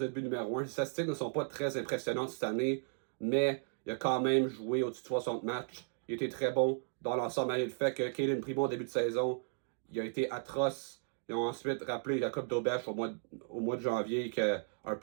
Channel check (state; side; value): silent; left; digital silence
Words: de but numéro 1. Les statistiques ne sont pas très impressionnantes cette année, mais il a quand même joué au-dessus de 60 matchs. Il était très bon dans l'ensemble, malgré le fait que Caden Primo, au début de saison, il a été atroce. Ils ont ensuite rappelé la Coupe d'Aubèche au mois de janvier, qui a un